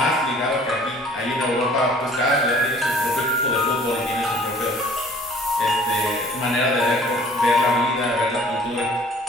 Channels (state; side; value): normal; both; correlation 0.52